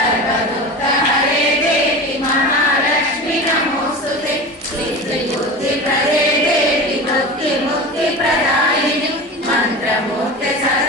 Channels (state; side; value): normal; both; correlation 0.30